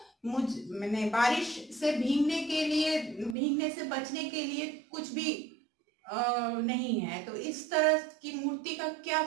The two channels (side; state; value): left; drops out; at 3.4 s